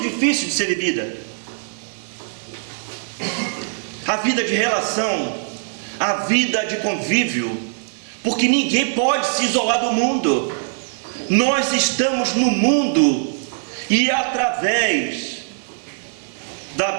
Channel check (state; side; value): silent; left; digital silence